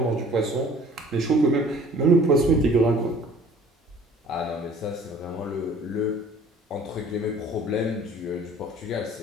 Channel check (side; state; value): both; normal; correlation 0.51